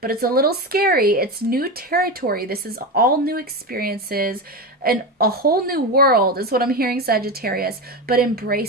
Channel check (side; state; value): both; normal; correlation 0.19